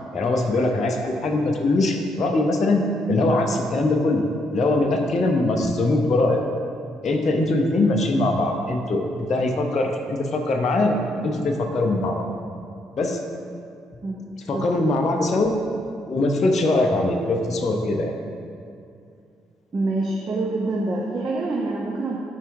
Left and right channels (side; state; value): both; normal; correlation 0.75